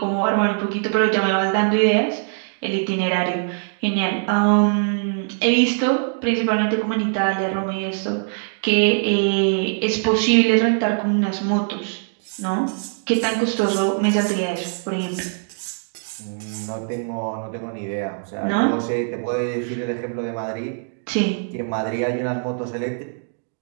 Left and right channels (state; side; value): silent; left; digital silence